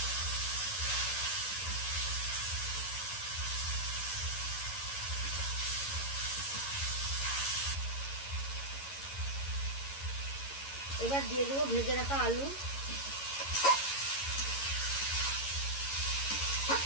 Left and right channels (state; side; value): late; right; 11 ms